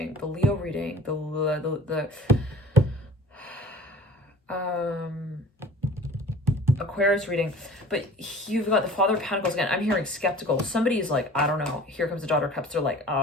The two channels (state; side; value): normal; both; correlation 0.45